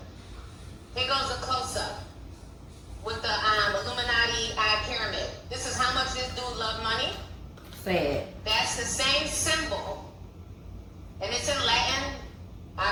Here goes a close-up with the Illuminati eye pyramid. This is how much this dude loved money. Sad. That's the same symbol. And it's in Latin.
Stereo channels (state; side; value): identical; both; correlation 1.00